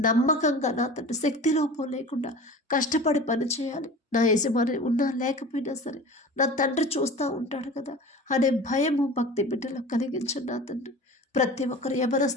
నమ్మకంగా నా తండ్రి శక్తి లోపం లేకుండా కష్టపడి పని చేయాలి. నా యజమాని ఉన్నా లేకపోయినా సరే నా తండ్రి చూస్తూ ఉంటాడు కదా అనే భయము భక్తి బిడ్డలో కలిగించండి నా తండ్రి. ప్రతి ఒక్కరు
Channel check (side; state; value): both; normal; correlation 0.37